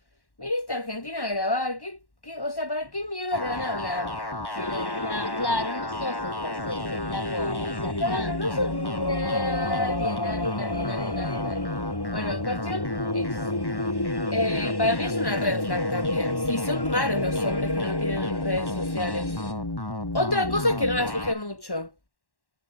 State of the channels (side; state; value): right; late; 1.1 ms